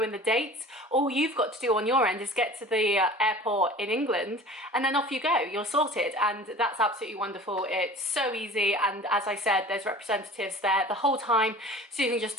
in the dates, all you've got to do on your end is get to the airport in England, and then off you go, you're sorted. And that's absolutely wonderful. It's so easy, and as I said, there's representatives there the whole time, so you can just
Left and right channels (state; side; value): normal; both; correlation 0.41